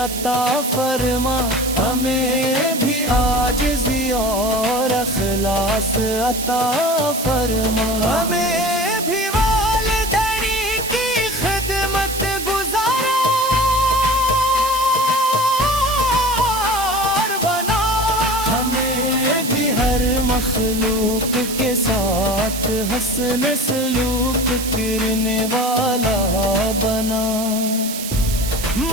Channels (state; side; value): noise; right; hiss, 7 dB below the sound